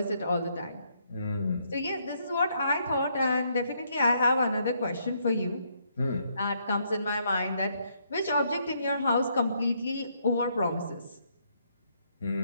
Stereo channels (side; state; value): both; inverted; correlation -0.73